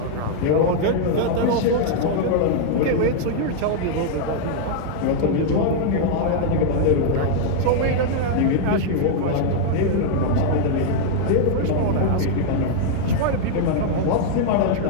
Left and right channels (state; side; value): different; both; correlation -0.01